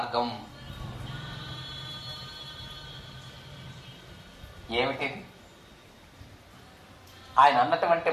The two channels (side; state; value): both; identical; correlation 1.00